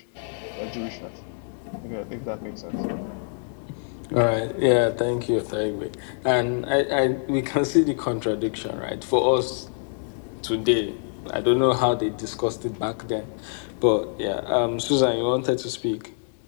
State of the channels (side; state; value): right; silent; 61 dB below the other